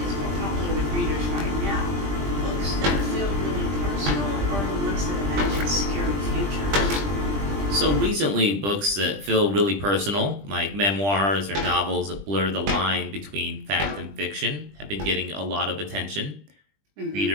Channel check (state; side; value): late; left; 20 ms